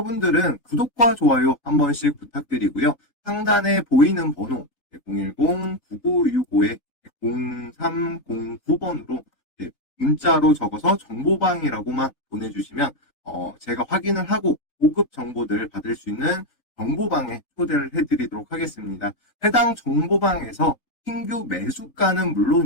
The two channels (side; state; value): right; late; 3.3 ms